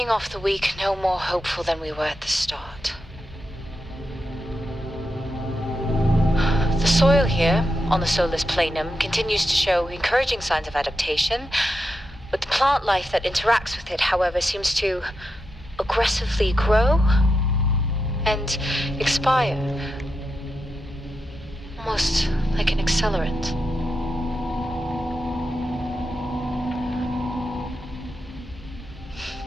off the week no more hopeful than we were at the start. The soil here, on the Solis Planum, continues to show encouraging signs of adaptation, but the plant life that interacts with it, however, seems to aggressively grow and expire. Almost like an accelerant.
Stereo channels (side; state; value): both; normal; correlation 0.87